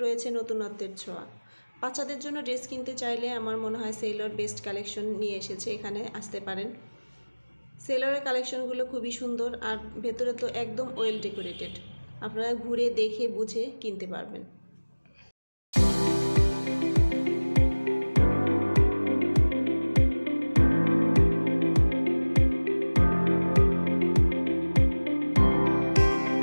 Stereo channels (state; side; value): inverted; both; correlation -1.00